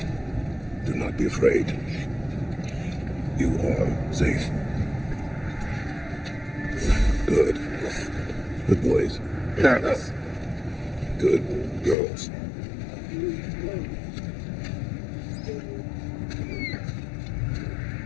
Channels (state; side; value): drops out; right; at 12.0 s